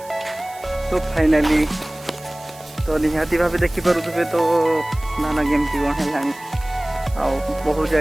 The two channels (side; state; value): right; noise; hiss, 21 dB below the sound